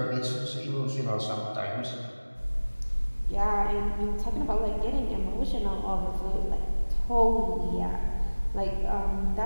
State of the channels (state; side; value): inverted; both; correlation -1.00